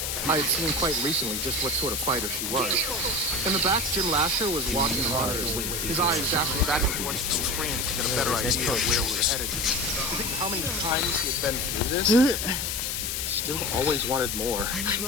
I had seen quite recently just what sort of fighter she was. In the back, Jim Lasher was watching the monitors, his eyes dashing back and forth to the screen to get a better idea of where we were headed. To think how many times he had been through this, still always wanted more.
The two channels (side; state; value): left; noise; hiss, 2 dB below the sound